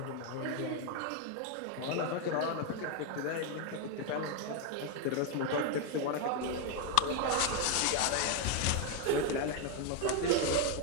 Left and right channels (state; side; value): different; both; correlation 0.01